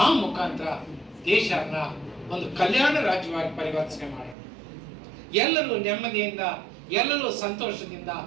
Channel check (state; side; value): drops out; left; at 4.4 s